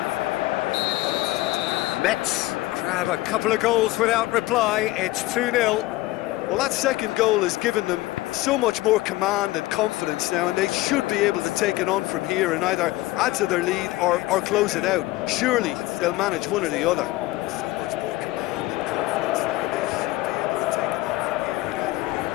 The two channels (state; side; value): quieter; right; 18.6 dB